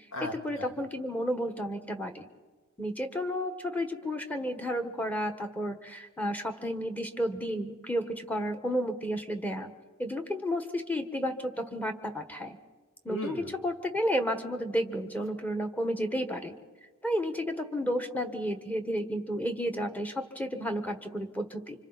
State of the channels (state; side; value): normal; both; correlation 0.75